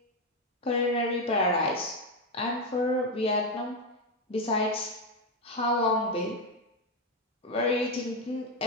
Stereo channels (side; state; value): both; normal; correlation 0.07